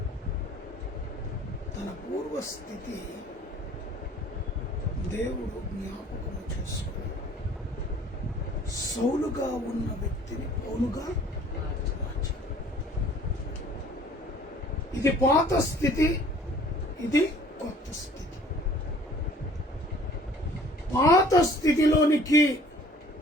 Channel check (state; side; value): normal; both; correlation 0.52